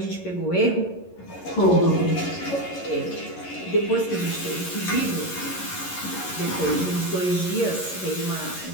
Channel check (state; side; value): late; right; 11 ms